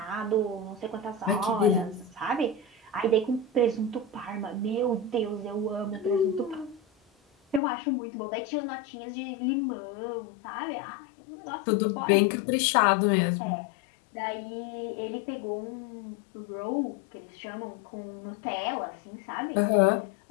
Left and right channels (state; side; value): drops out; right; at 7.6 s